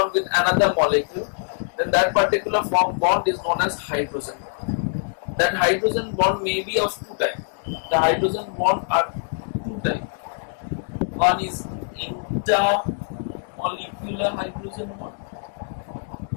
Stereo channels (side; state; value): right; silent; digital silence